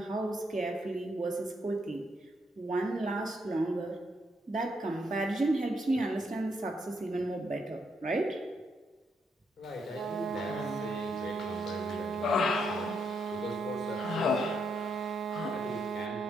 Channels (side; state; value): both; normal; correlation 0.77